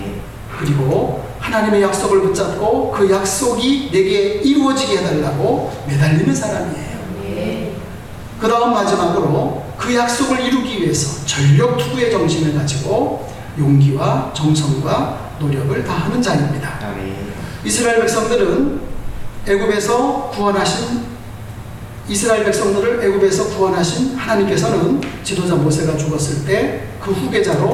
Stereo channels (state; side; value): identical; both; correlation 1.00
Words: 그리고 하나님의 약속을 붙잡고 그 약속이 내게 이루어지게 해달라고 매달리는 사람이에요. 그 다음 마지막으로 그 약속을 이루기 위해서 전력 투구의 정신을 가지고 용기와 정성과 노력을 다하는 자입니다. 아멘. 이스라엘 백성들을 애굽에서 구원하신 하나님께서는 지도자 모세가 죽었을 때 그